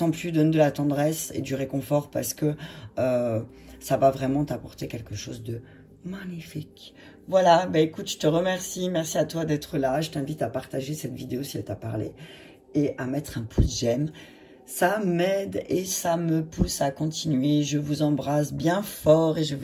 donne de la tendresse et du réconfort parce que ça va vraiment t'apporter quelque chose de magnifique. Voilà, bah écoute, je te remercie, merci à toi d'être là. Je t'invite à partager cette vidéo si elle t'a parlé et à mettre un pouce j'aime. Ça m'aide et ça me pousse à continuer. Je vous embrasse bien fort et je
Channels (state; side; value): identical; both; correlation 1.00